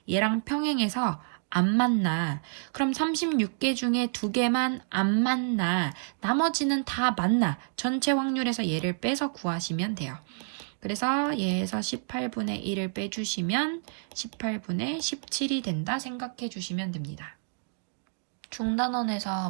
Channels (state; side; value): silent; left; digital silence